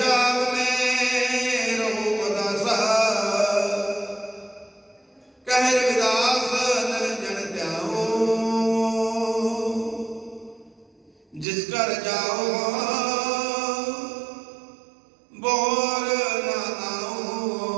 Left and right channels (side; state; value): left; drops out; at 11.5 s